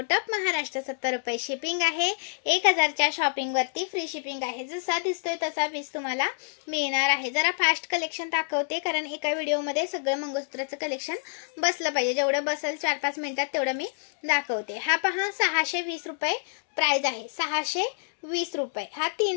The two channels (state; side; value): silent; right; digital silence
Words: ऑफ महाराष्ट्र 70 रुपये शिपिंग आहे। 1000 च्या शॉपिंग वरती फ्री शिपिंग आहे। जसा दिसतोय तसा पीस तुम्हाला मिळणार आहे। जरा फास्ट कलेक्शन दाखवते कारण एका व्हिडिओ मध्ये सगळं मंगळसूत्राचं कलेक्शन बसलं पाहिजे। जेवढं बसेल 4-5 मिनिटात तेवढं मी दाखवते। हा पहा 620 रुपये प्राइस आहे। 620 रुपये। हा